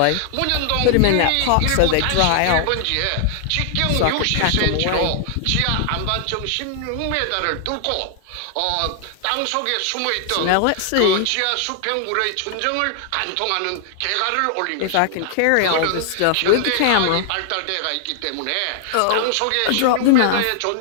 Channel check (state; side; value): different; both; correlation 0.00